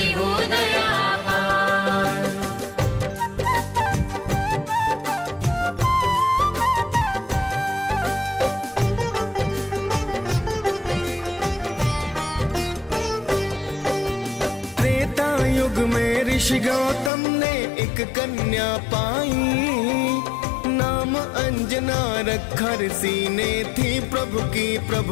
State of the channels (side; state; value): right; drops out; at 17.1 s